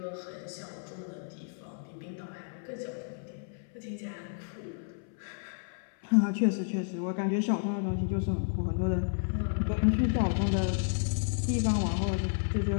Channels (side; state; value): right; silent; 57 dB below the other